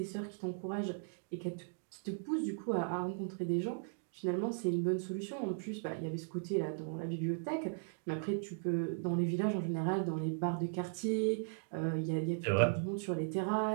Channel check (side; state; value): left; silent; digital silence